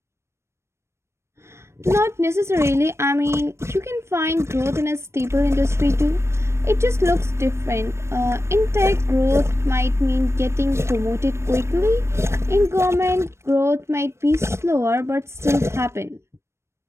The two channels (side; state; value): left; late; 0.13 ms